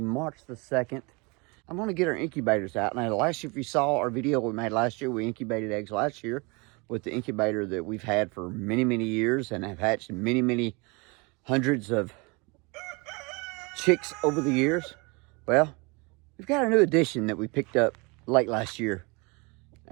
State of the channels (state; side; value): quieter; left; 28.5 dB